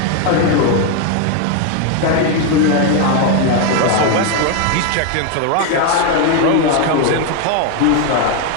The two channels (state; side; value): different; both; correlation 0.01